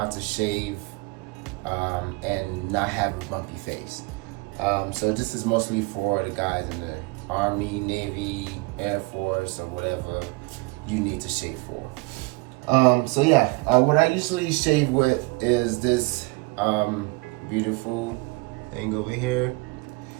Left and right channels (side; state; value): left; quieter; 25.4 dB